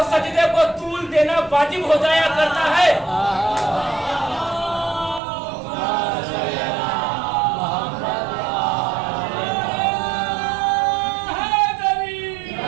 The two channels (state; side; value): drops out; left; at 5.2 s